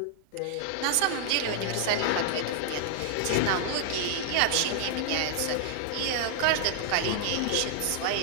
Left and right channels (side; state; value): both; different; correlation 0.00